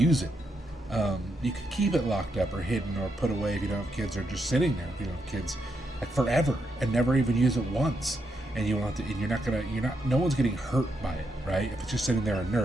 it. You could keep it locked up or hidden or put away if you don't have kids, or just sitting there if you don't have kids, like forever, and never even use it once. And you don't have to, and no one's getting hurt by it, right? If it's just sitting there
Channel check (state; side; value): normal; both; correlation 0.81